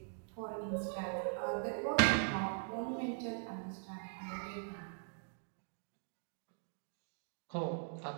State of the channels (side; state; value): left; silent; digital silence